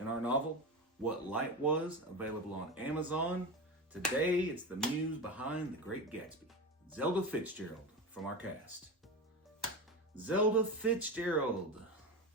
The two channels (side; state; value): both; normal; correlation 0.22